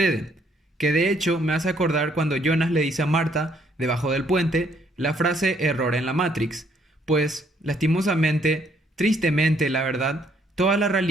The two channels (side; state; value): both; normal; correlation 0.67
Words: que de hecho me hace acordar cuando Jonas le dice a Marta, debajo del puente, la frase error en la Matrix, pues, lastimosamente, tristemente la verdad, toda la